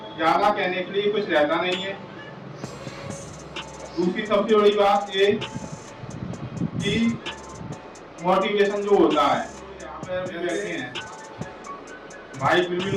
ज़्यादा कहने के लिए कुछ रहता नहीं है। दूसरी सबसे बड़ी बात ये कि मोटिवेशन जो होता है, यहाँ पे बैठे हैं भाई,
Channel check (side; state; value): both; identical; correlation 1.00